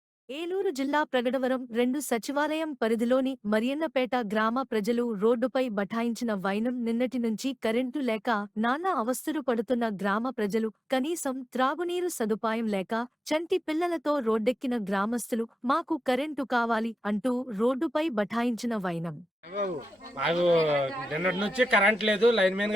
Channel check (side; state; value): both; normal; correlation 0.93